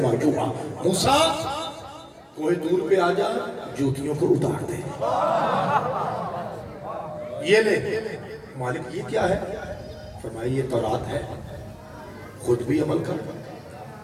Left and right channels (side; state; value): both; identical; correlation 1.00